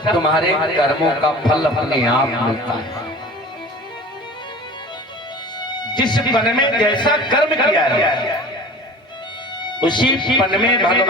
तुम्हारे कर्मों का फल अपने आप मिलता है। जिस पन में जैसा कर्म किया है उसी पन में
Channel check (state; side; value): normal; both; correlation 0.40